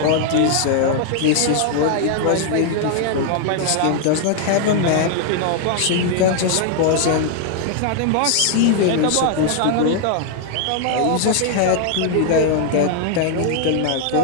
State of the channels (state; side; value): different; both; correlation 0.00